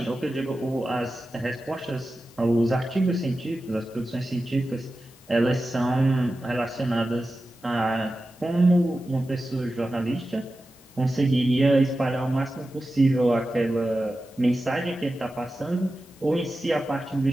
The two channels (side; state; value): both; normal; correlation 0.93